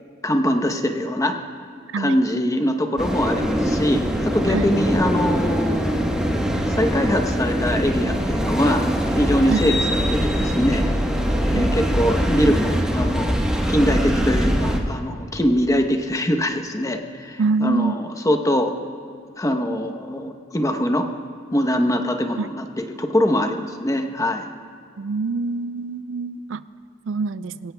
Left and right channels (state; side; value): normal; both; correlation 0.80